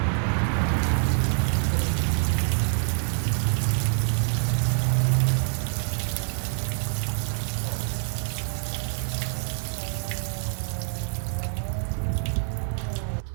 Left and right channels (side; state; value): left; silent; 61 dB below the other